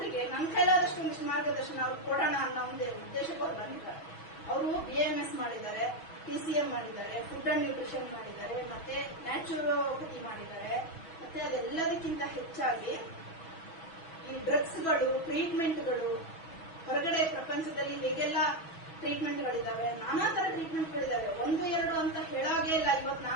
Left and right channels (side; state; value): right; late; 6.1 ms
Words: ನಮ್ಮ ಕೈಲಾದಷ್ಟು ಒಂದಿಷ್ಟು ಮಾರ್ಗದರ್ಶನ ಅವ್ರು ಕೊಡೋಣ ಅನ್ನೋ ಒಂದು ಉದ್ದೇಶಕ್ಕೆ ಅವ್ರು ಬಂದಿದ್ದಾರೆ. ಅವರು BAMS ಮಾಡಿದ್ದಾರೆ, TCM ಮಾಡಿದ್ದಾರೆ, ಫುಡ್ ಅಂಡ್ ನ್ಯೂಟ್ರಿಷನ್ ಮಾಡಿದ್ದಾರೆ, ಮತ್ತೆ ನ್ಯಾಚುರೋಪತಿ ಮಾಡಿದ್ದಾರೆ. ಮತ್ತೆ ಅದೆಲ್ಲದಕ್ಕಿಂತ ಹೆಚ್ಚಾಗಿ ಈ ಡ್ರಗ್ಸ್ಗಳು, ಟ್ರೀಟ್ಮೆಂಟ್ಗಳು, ಹೊರಗಡೆ ಪ್ರಪಂಚದಲ್ಲಿ ಹೇಗೆಲ್ಲ ಟ್ರೀಟ್ಮೆಂಟ್ಗಳಿದ್ದಾವೆ, ನಾನಾ ತರ ಟ್ರೀಟ್ಮೆಂಟ್ಗಳಿದ್ದಾವೆ. 1-2 ಅಂತ ಹೇಳಾಗೇ ಇಲ್ಲ. ಇವತ್ತು